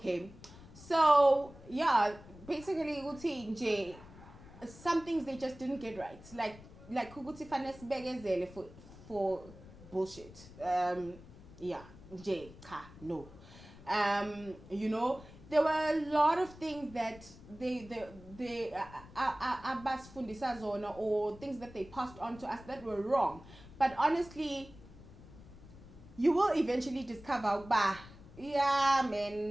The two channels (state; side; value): noise; left; rumble, 19 dB below the sound